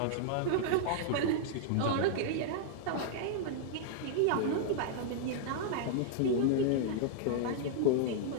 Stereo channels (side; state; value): both; different; correlation -0.01